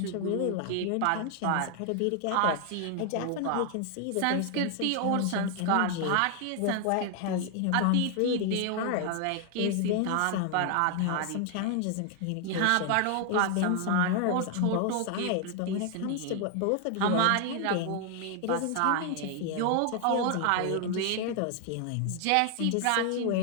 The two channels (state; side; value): different; both; correlation 0.00